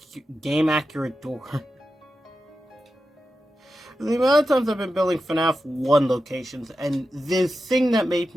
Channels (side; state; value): both; normal; correlation 0.90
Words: game accurate door. The amount of times I've been building FNAF 1 locations, and the thing that made